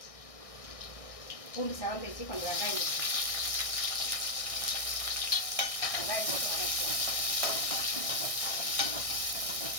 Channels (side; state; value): right; late; 1.6 ms